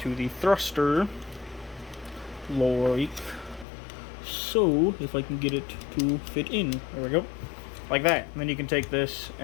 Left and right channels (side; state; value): right; drops out; at 3.7 s